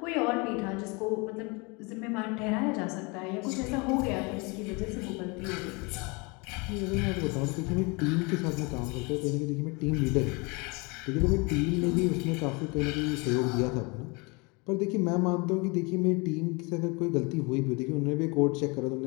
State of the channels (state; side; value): quieter; right; 28.6 dB